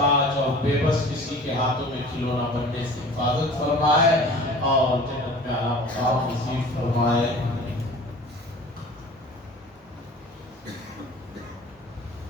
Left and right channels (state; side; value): normal; both; correlation 0.43